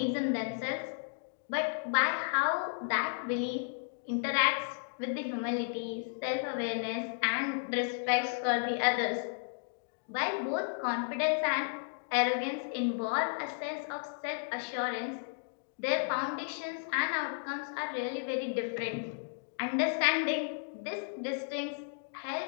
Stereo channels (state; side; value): silent; right; digital silence